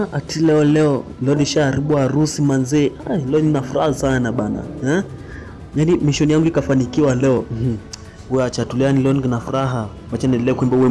Ati leo nishaharibu harusi manzee. Leo nina furaha sana bana. Yaani mission yangu ikafanikiwa leo. Wewe acha tuliani leo nina furaha. Wacha niendelee kuimba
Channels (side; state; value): both; identical; correlation 1.00